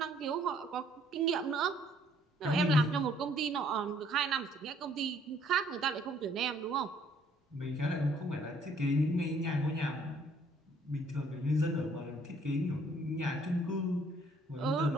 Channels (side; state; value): both; normal; correlation 0.62